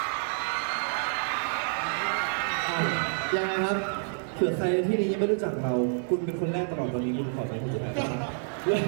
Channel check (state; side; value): silent; left; 59 dB below the other